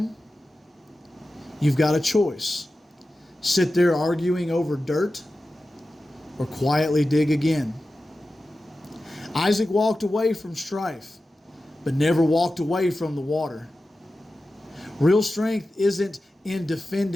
you've got a choice. Sit there arguing over dirt or quietly dig again. Isaac walked away from strife, but never walked away from the water. Real strength isn't in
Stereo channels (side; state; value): both; normal; correlation 0.94